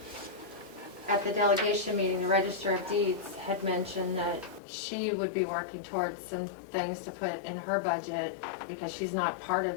at the delegation meeting, the Register of Deeds had mentioned that she would be working towards some things to put in her budget because she's not part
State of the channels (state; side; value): drops out; right; at 4.6 s